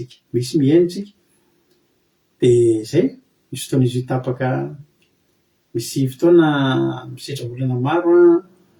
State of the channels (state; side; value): identical; both; correlation 1.00